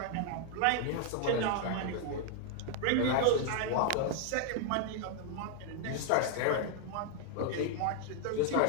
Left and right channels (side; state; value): both; different; correlation 0.00